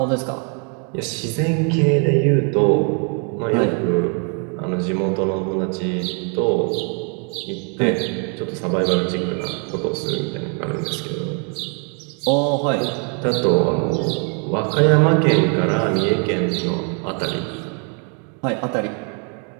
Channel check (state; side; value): quieter; left; 39.3 dB